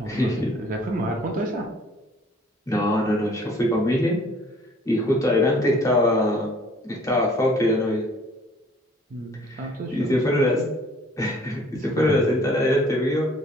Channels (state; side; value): normal; both; correlation 0.56